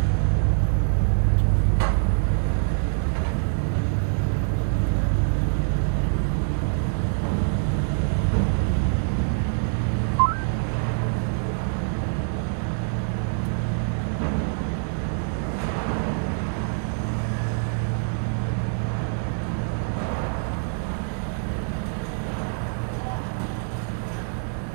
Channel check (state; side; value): silent; left; digital silence